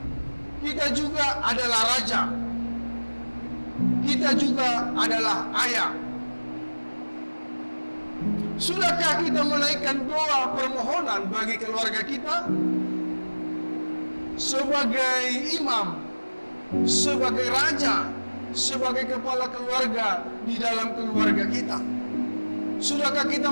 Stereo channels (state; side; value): inverted; both; correlation -1.00